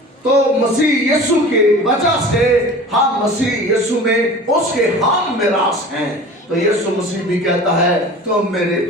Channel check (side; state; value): both; normal; correlation 0.39